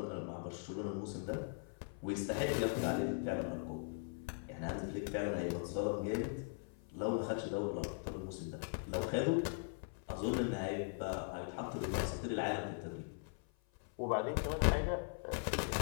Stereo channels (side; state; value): right; silent; 51 dB below the other